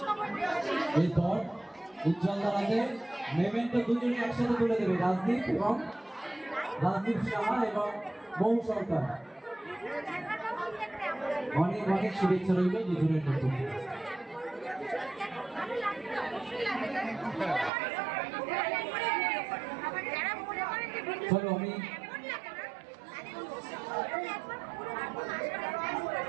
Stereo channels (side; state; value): left; drops out; at 17.7 s